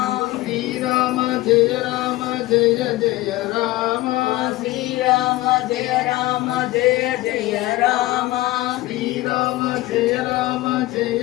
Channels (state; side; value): quieter; right; 18.1 dB